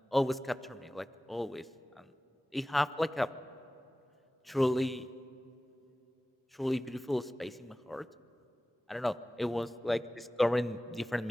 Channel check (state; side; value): normal; both; correlation 0.97